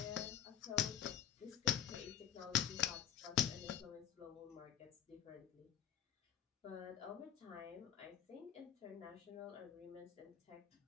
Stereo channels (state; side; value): quieter; right; 10.3 dB